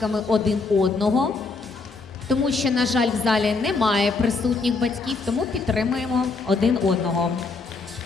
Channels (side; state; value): right; quieter; 4.1 dB